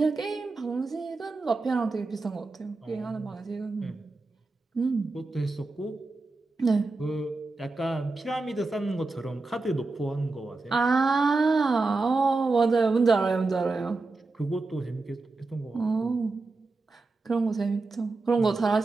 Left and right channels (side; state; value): left; quieter; 3.5 dB